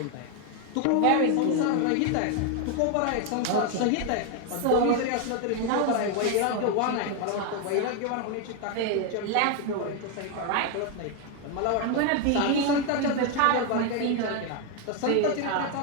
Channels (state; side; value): different; both; correlation 0.01